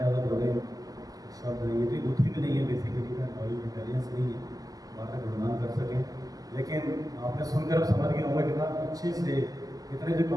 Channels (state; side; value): late; left; 0.17 ms